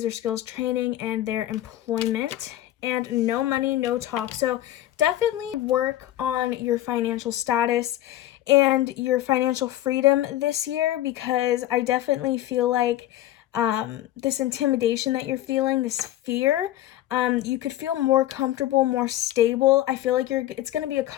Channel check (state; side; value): quieter; right; 13.9 dB